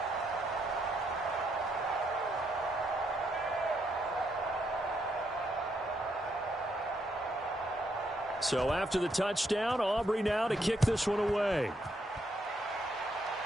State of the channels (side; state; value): both; normal; correlation 0.76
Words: So after the touchdown, Aubrey now to kick this one away.